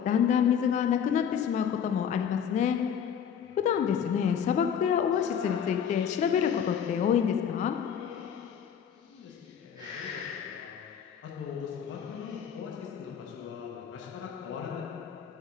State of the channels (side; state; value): right; quieter; 8.1 dB